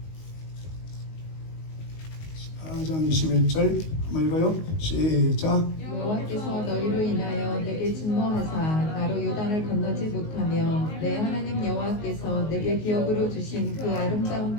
4장 21절 한번 읽어요. 시작. 여호와께서 너희로 인하여 내게 진노하사 나로 요단을 건너지 못하며 내 하나님 여호와께서 내게 기업으로 주신 그 아름다운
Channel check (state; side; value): late; right; 19 ms